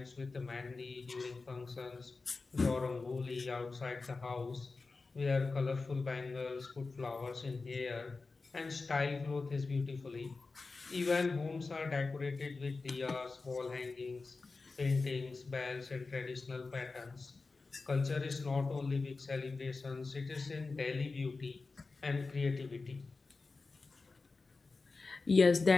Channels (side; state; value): right; quieter; 4.0 dB